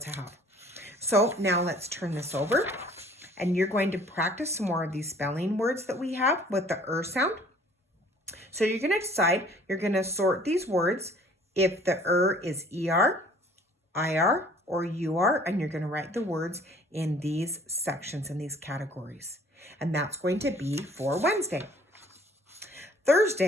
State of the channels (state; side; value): normal; both; correlation 0.54